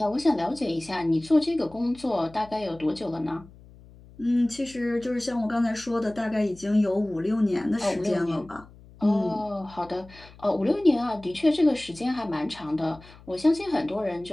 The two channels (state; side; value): noise; left; hum, 22 dB below the sound